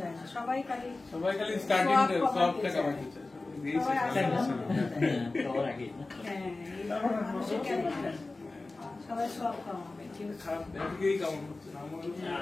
সবাই খালি স্টার্টিং সব টাকা বাকি চায়। সবাই সব কামাবে, কিন্তু খারাপ দিকেই কাম করছে না।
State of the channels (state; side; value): quieter; right; 3.3 dB